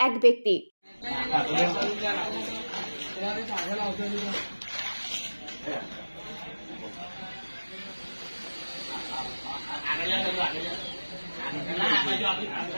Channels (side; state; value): both; inverted; correlation -1.00